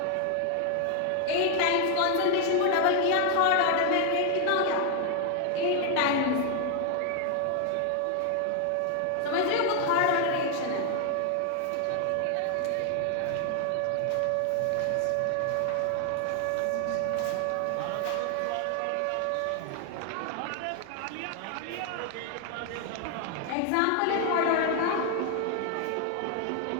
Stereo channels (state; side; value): different; both; correlation 0.00